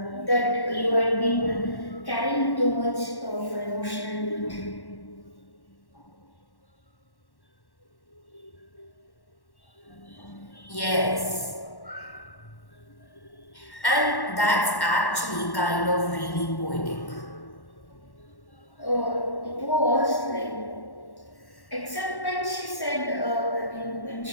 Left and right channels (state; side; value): late; right; 1.1 ms